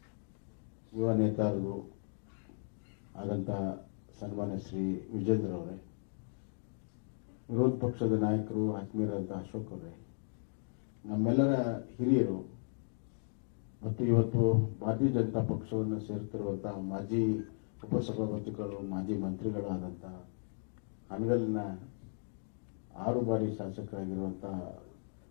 ಯುವ ನೇತಾರರು ಆದಂತಹ ಸನ್ಮಾನ್ಯ ಶ್ರೀ ವಿಜೇಂದ್ರ ಅವರೇ, ವಿರೋಧ ಪಕ್ಷದ ನಾಯಕರು ಆತ್ಮೀಯರಾದಂತಹ ಅಶೋಕ್ ಅವರೇ, ನಮ್ಮೆಲ್ಲರ ಹಿರಿಯರು ಮತ್ತು ಇವತ್ತು ಭಾರತೀಯ ಜನತಾ ಪಕ್ಷವನ್ನು ಸೇರುತ್ತಿರುವಂತಹ ಮಾಜಿ ಉಪಸಭಾಪತಿಗಳು, ಮಾಜಿ ಮಂತ್ರಿಗಳಾದಂತಹ ಹನಗಲಿನ 6 ಬಾರಿ ಶಾಸಕರಾಗಿರುವಂತಹ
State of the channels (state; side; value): silent; right; digital silence